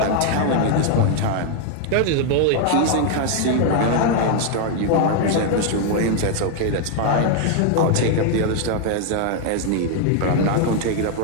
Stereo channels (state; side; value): different; both; correlation 0.01